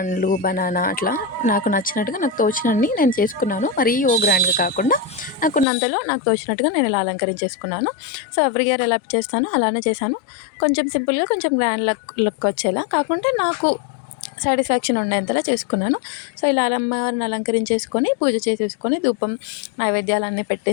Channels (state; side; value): drops out; right; at 5.7 s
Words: బనానా అట్లా నాకు నచ్చినట్టుగా నాకు తోచినన్ని నేను చేసుకున్నాను. మరీ గ్రాండ్‌గా కాకుండా నాకున్నంతలో నాకు తోచినట్టుగా నేను ఇలా అలంకరించేసుకున్నాను. సో, ఎవ్రీ ఇయర్ ఎలా చేస్తానో అలానే చేశాను. కొంచెం సింపుల్‌గా, కొంచెం గ్రాండ్ లుక్ వచ్చేలా కాకుంటే నాకు సాటిస్ఫాక్షన్ ఉండేంతలా చేసుకున్నాను. సో, ఇలా అమ్మవారిని అలంకరించేసుకొని, పూజ చేసేసుకొని, ధూపం, నైవేద్యాలన్నీ